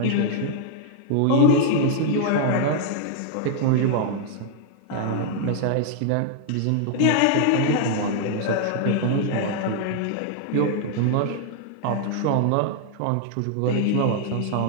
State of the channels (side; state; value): both; different; correlation 0.00